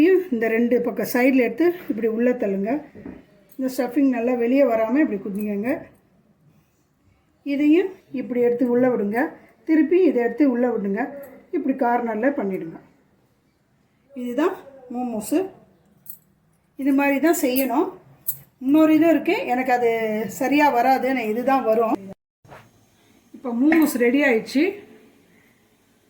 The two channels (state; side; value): identical; both; correlation 1.00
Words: இந்த 2 பக்கம் சைடில் எடுத்து இப்படி உள்ளே தள்ளுங்க. இந்த ஸ்டஃபிங் நல்லா வெளியே வராமல் இப்படி குதிங்க. இதையும் இப்படி எடுத்து உள்ளே விடுங்க. திருப்பி இதை எடுத்து உள்ளே விடுங்க. இப்படி கார்னரில் பண்ணிவிடுங்க. இதுதான் மோமோஸு. இது மாதிரி தான் செய்யணும். இன்னொரு இதுவும் இருக்குது, எனக்கு அது சரியாக வராது, நான் இதுதான் வரும். இப்போ மோமோஸ் ரெடி ஆயிடுச்சு.